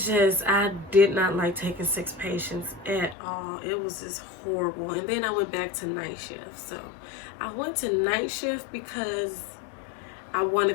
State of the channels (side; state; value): right; drops out; at 3.2 s